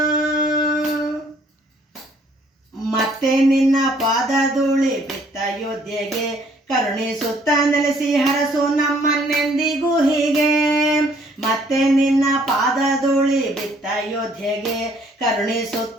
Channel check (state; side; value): normal; both; correlation 0.62